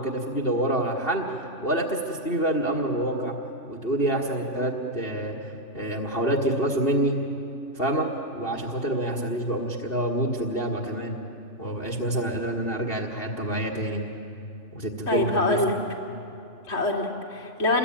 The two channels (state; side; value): late; right; 2.8 ms